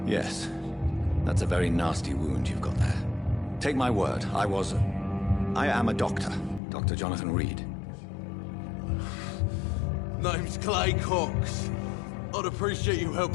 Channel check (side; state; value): right; drops out; at 6.6 s